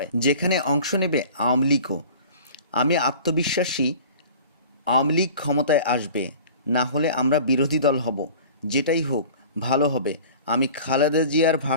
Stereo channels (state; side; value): inverted; both; correlation -0.43